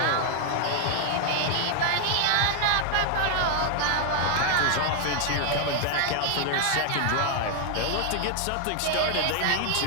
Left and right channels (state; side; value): different; both; correlation 0.00